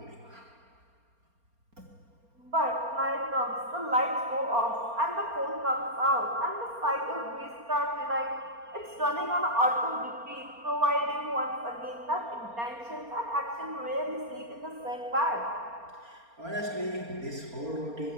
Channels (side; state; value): left; late; 4.3 ms